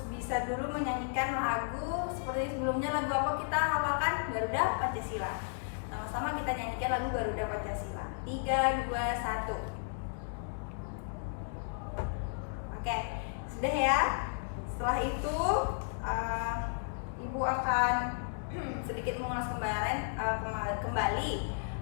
bisa dulu menyanyikan lagu seperti sebelumnya. Lagu apa kita hafalkan? Garuda Pancasila. Sama-sama kita nyanyikan lagu Garuda Pancasila. 3, 2, 1. Oke, sudah ya. Setelah itu Ibu akan sedikit mengulas kembali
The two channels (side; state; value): right; silent; digital silence